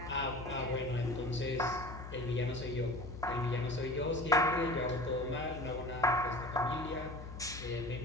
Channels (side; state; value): left; noise; hum, 10 dB below the sound